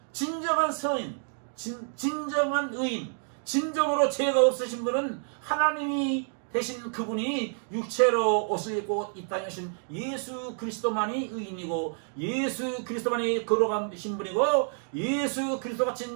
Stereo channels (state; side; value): silent; left; 59 dB below the other